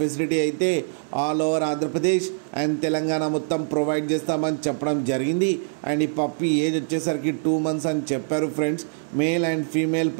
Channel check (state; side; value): silent; left; digital silence